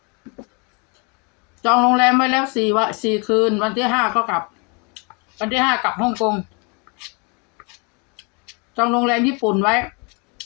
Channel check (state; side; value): quieter; right; 31.6 dB